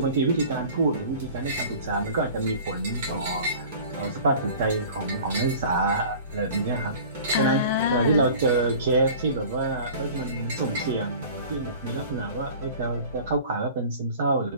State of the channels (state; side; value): inverted; both; correlation -0.43